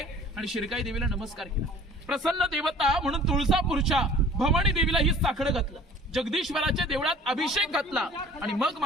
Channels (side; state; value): both; normal; correlation 0.49